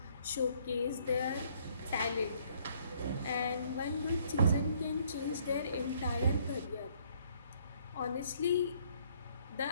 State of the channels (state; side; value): inverted; both; correlation -0.65